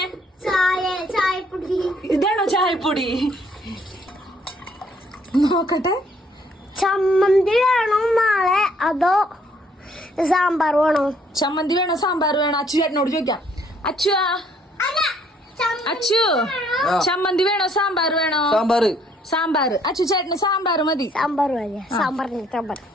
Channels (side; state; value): both; normal; correlation 0.65